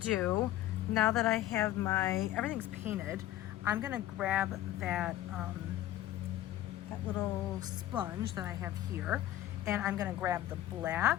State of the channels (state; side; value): quieter; right; 13.9 dB